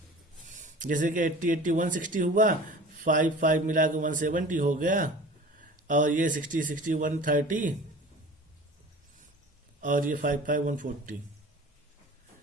जैसे कि 80 80 160 हुआ, 5 5 मिला के 170 हो गया, और ये 60 60 130, और ये 5 5 140,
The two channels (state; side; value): normal; both; correlation 0.41